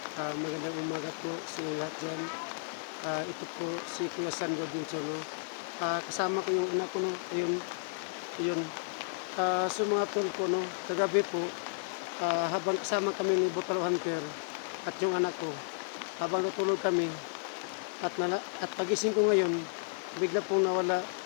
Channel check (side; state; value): right; silent; digital silence